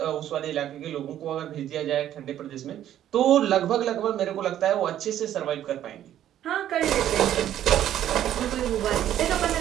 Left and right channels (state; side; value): quieter; left; 11.5 dB